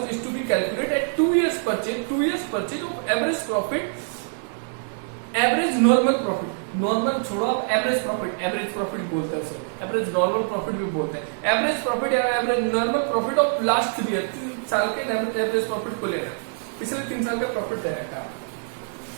is to be calculate at 2 years purchase of average profit, average normal profit, normal छोड़ो आप एवरेज प्रॉफिट बोलते हैं उसे, एवरेज नॉर्मल प्रॉफिट भी बोलते हैं, एवरेज प्रॉफिट या average normal profit of last 3 years, 3 साल के एवरेज प्रॉफिट को लेना, पिछले 3 साल का प्रॉफिट दे रखा है।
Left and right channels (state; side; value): silent; left; digital silence